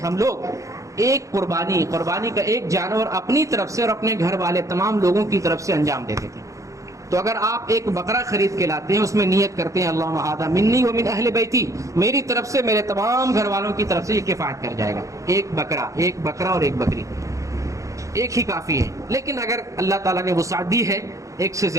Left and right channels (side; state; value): left; late; 0.15 ms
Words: لوگ ایک قربانی کا ایک جانور اپنی طرف سے اور اپنے گھر والے تمام لوگوں کی طرف سے انجام دیتے تھے۔ تو اگر آپ ایک بکرا خرید کے لاتے ہیں، اس میں نیت کرتے ہیں اللہم ھذا منی ومن اہل بیتی، میری طرف سے میرے تمام گھر والوں کی طرف سے یہ کفایت کر جائے گا، ایک بکرا اور ایک بکری، ایک ہی کافی ہے۔ لیکن اگر اللہ تعالیٰ نے وسعت دی ہے، ایک سے